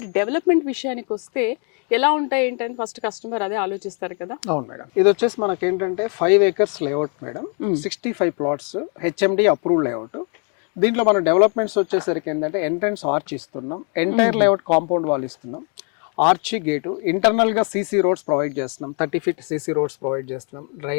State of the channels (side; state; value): right; quieter; 39.1 dB